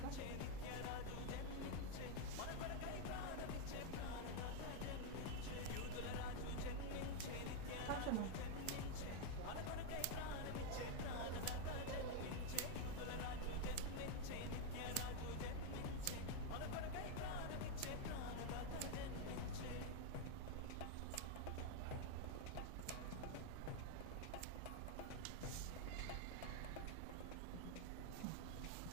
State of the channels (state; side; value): different; both; correlation 0.01